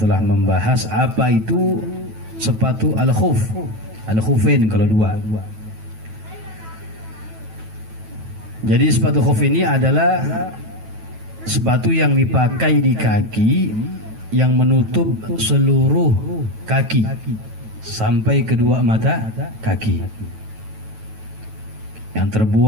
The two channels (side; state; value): left; late; 9.2 ms